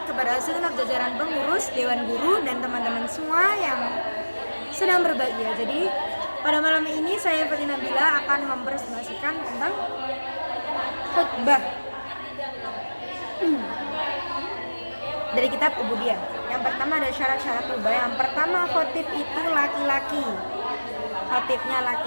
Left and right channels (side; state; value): both; inverted; correlation -1.00